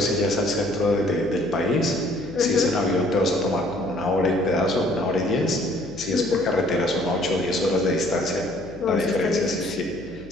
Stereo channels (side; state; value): left; noise; hum, 19 dB below the sound